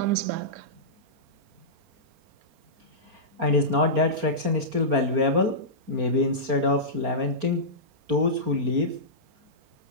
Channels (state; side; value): late; left; 4.3 ms